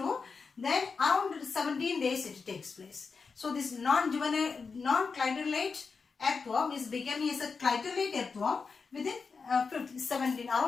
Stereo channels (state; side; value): quieter; right; 5.0 dB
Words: Then around 17 days it takes place. So this non-juvenile, non-clitellate earthworm is becoming as a clitellate earthworm within